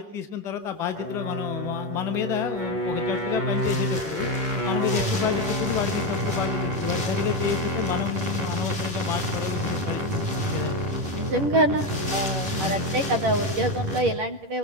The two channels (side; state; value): left; late; 11 ms